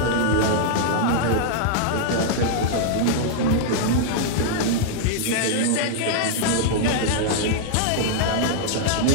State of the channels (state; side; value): different; both; correlation -0.01